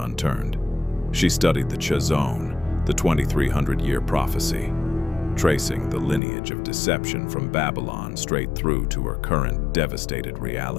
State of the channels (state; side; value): drops out; right; at 6.2 s